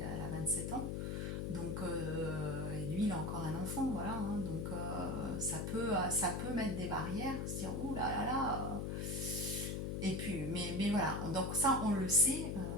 elle a 27 ans. Donc, et lui, il a encore un enfant, voilà. Hein, donc, ça peut mettre des barrières, se dire, ouh là là là. Et puis, mais voilà. Donc, ça, on le sait.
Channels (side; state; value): left; noise; hum, 2 dB below the sound